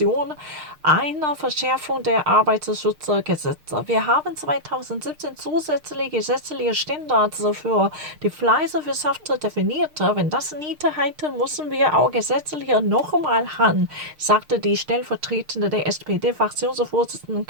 eine Verschärfung der Arbeitsschutzgesetze. Wir haben 2017 zusätzliche gesetzliche Standards für die Fleischwirtschaft definiert. Wenn das nicht reicht, müssen wir auch gesetzlich nochmal ran, sagte die stellvertretende der SPD-Fraktionsvorsitzende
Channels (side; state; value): left; late; 6.6 ms